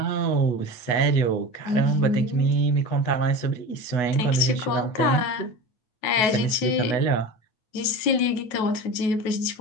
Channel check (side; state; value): right; late; 9.2 ms